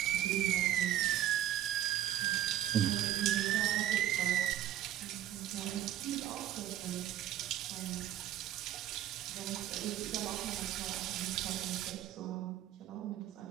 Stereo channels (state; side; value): quieter; left; 12.2 dB